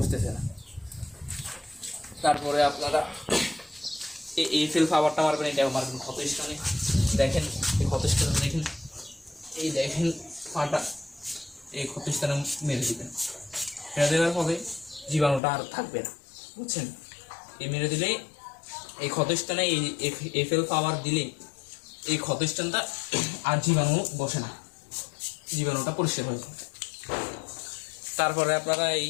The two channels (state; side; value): drops out; right; at 15.4 s